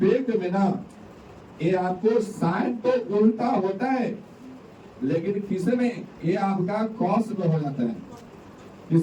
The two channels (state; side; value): identical; both; correlation 1.00